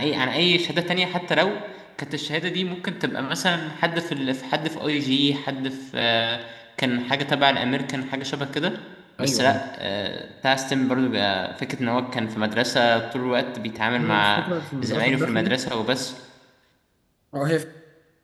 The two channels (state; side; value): identical; both; correlation 1.00